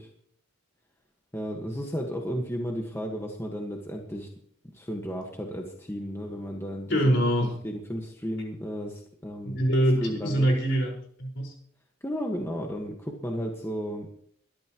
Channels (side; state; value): both; normal; correlation 0.76